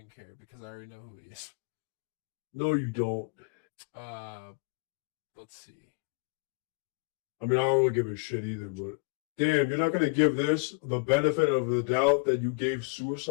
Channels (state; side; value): quieter; right; 31.9 dB